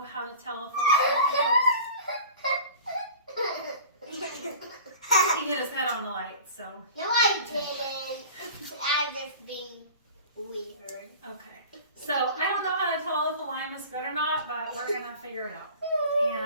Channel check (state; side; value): inverted; both; correlation -0.40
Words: how to tell if he hit his head on the light. So No, I didn't. I'm just being weird. okay. So I don't know how to tell if the lime is good or not, but we're gonna figure it out.